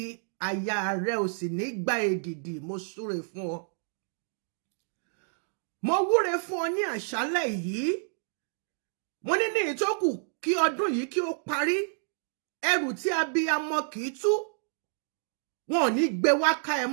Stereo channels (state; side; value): silent; left; digital silence